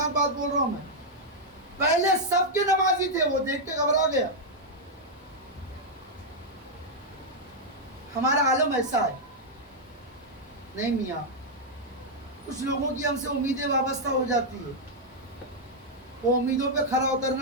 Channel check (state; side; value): normal; both; correlation -0.02